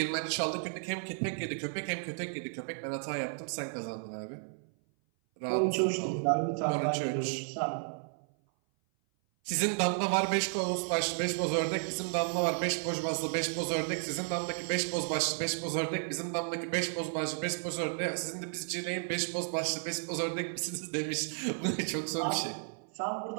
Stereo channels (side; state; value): left; silent; 56 dB below the other